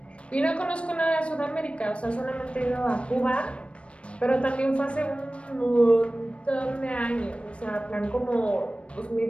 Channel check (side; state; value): right; late; 0.060 ms